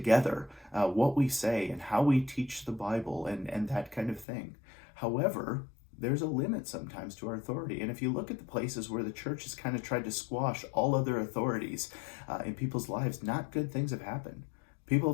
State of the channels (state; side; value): drops out; right; at 4.2 s